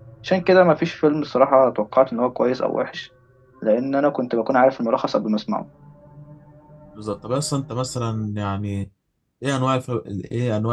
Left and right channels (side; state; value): both; identical; correlation 1.00